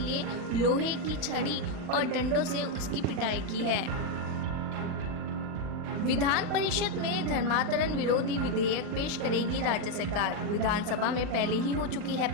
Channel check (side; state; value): left; late; 39 ms